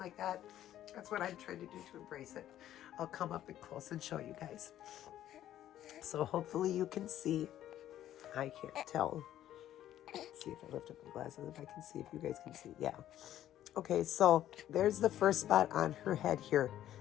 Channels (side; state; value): right; quieter; 12.2 dB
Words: that. That's what I'm trying to do to embrace it. I'll come up and close and show you guys. So hopefully you can see. I can't tell. Let's see if I lift up my glasses, if I can see, if you guys can see. Yeah. Okay, so there's the first spot on her head here.